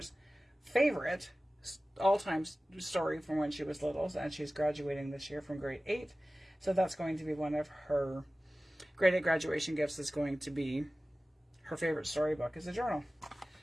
favorite all-time story from when she was little, and she's graduating this year from grade 8. So that's going to be one of her grade 8 graduation gifts, is going to be her favorite storybook is a journal.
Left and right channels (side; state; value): both; normal; correlation 0.97